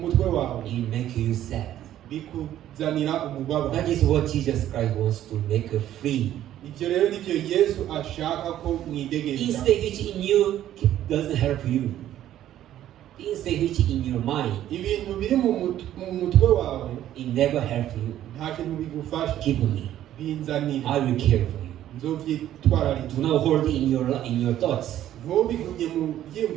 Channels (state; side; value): quieter; left; 12.2 dB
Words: wawe it make you sad. bikuzanira umubabaro. That is what Jesus Christ wants to make free. Ivyo rero nivyo Yesu ashaka ko mwidegemera. Instinct which in you doesn't help you. Instinct which in your mind, Ibintu biri mu mutwe wawe it never help you. nta kintu bigufasha. Give me. Binzanire. I will care for you. Nzovyitwararika. Do not hold it in your thoughts. Ntubigumye mu